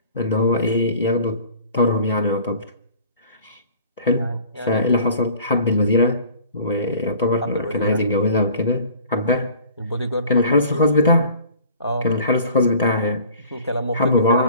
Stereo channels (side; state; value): both; inverted; correlation -0.48